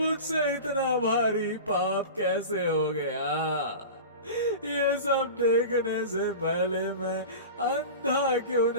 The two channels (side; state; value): both; inverted; correlation -0.31